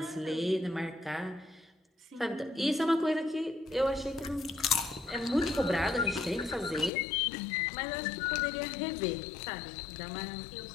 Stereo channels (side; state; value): right; drops out; at 6.9 s